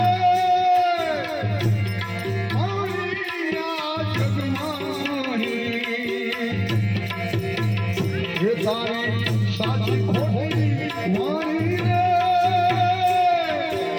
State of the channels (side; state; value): both; identical; correlation 1.00